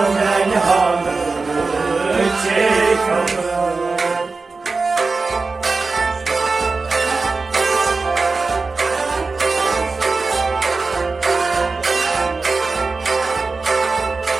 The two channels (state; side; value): quieter; left; 4.0 dB